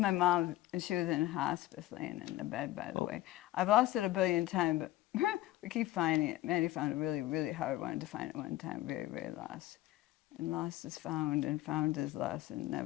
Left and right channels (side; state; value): right; quieter; 15.8 dB